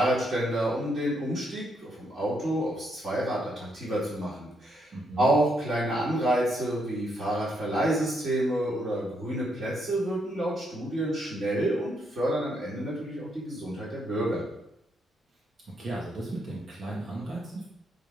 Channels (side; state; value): both; normal; correlation 0.76